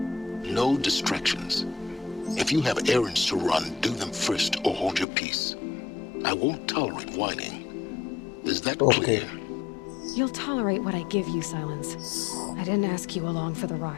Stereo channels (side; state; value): right; drops out; at 5.1 s